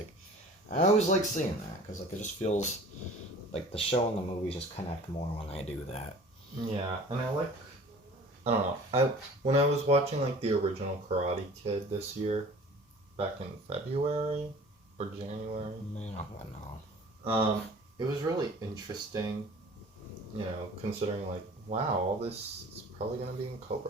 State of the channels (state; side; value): normal; both; correlation 0.46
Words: I always like seeing that because like it just feels like the show and the movies just connect more when they do that. Yeah, and I don't know. When I was watching, like, the original Karate Kid this year, back in February or January, Man, I don't know. it was really interesting, you know, considering, like, wow, all this is probably going to be in